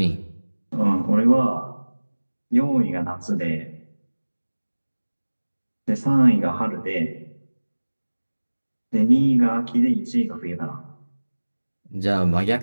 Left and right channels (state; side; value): inverted; both; correlation -1.00